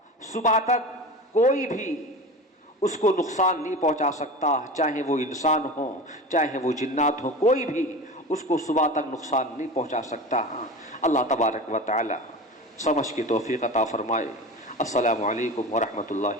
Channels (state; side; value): normal; both; correlation 0.31